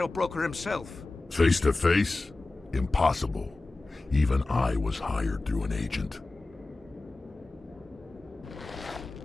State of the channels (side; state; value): right; quieter; 3.3 dB